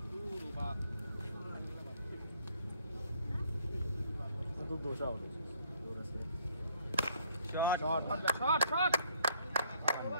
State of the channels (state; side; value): inverted; both; correlation -0.63